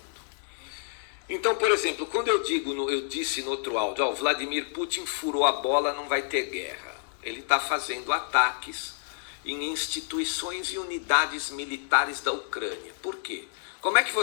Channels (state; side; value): silent; right; 59 dB below the other